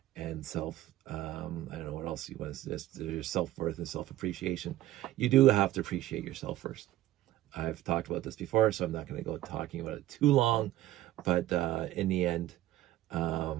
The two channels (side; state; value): left; quieter; 14.7 dB